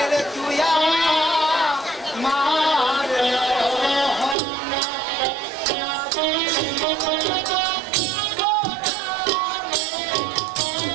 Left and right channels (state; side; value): drops out; left; at 4.4 s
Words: রে তুই আমার